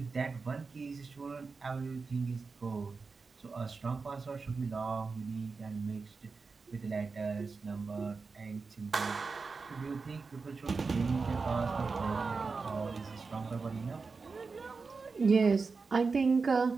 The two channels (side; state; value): left; quieter; 4.5 dB